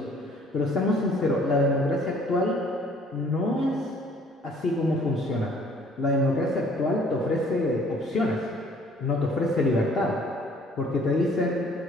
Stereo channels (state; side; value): normal; both; correlation 0.57